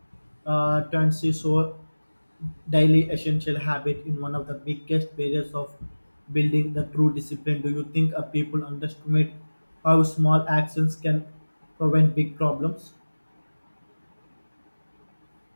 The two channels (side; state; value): both; inverted; correlation -1.00